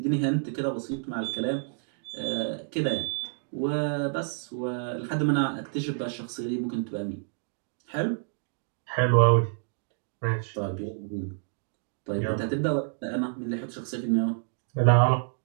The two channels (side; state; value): left; silent; digital silence